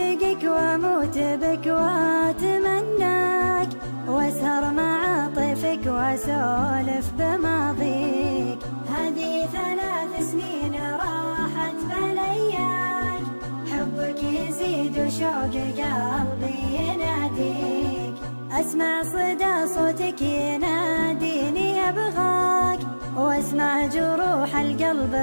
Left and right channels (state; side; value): inverted; both; correlation -1.00